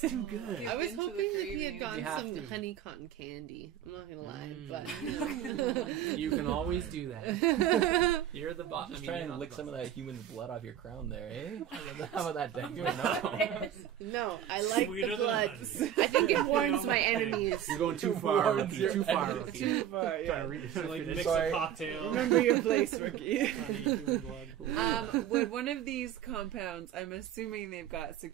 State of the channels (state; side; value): quieter; left; 10.5 dB